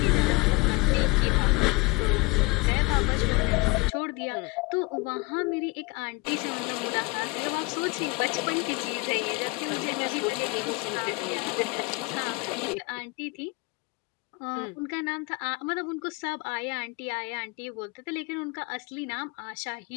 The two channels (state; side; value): quieter; right; 25.8 dB